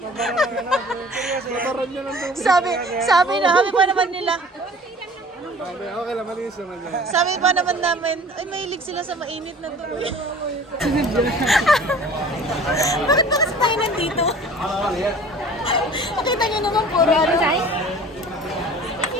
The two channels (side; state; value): both; normal; correlation 0.46